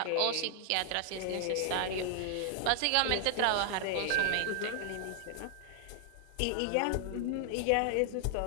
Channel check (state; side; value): different; both; correlation 0.00